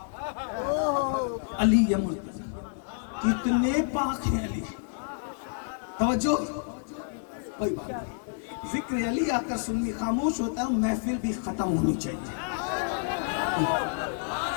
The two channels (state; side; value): silent; right; digital silence